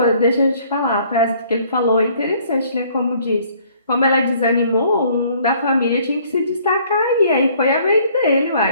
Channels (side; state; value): both; inverted; correlation -0.60